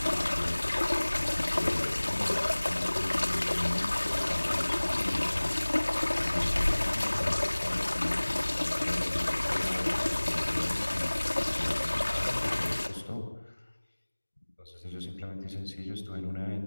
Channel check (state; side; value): inverted; both; correlation -1.00